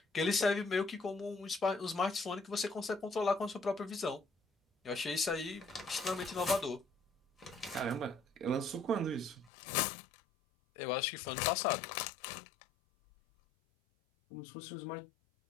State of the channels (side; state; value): right; drops out; at 9.5 s